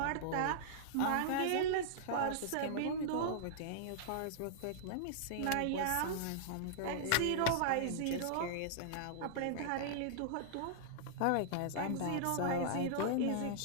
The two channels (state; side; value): different; both; correlation -0.02